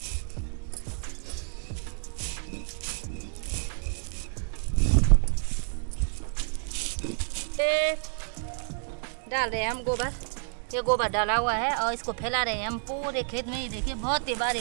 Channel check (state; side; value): silent; left; digital silence